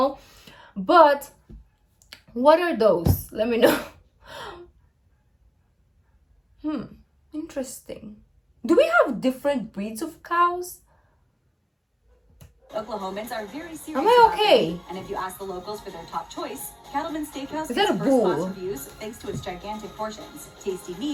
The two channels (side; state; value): both; identical; correlation 1.00